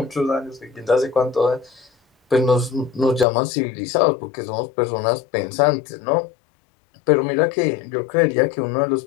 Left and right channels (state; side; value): drops out; right; at 3.2 s